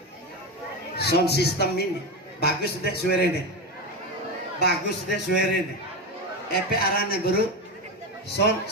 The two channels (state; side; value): normal; both; correlation 0.17